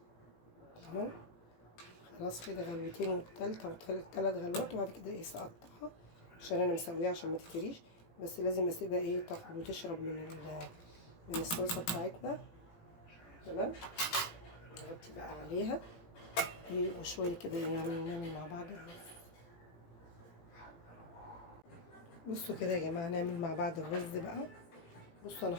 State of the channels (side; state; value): right; late; 17 ms